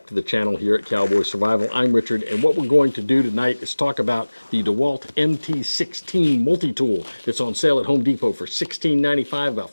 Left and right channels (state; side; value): inverted; both; correlation -1.00